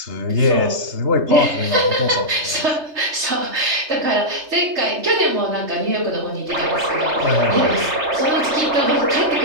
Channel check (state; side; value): late; left; 3.3 ms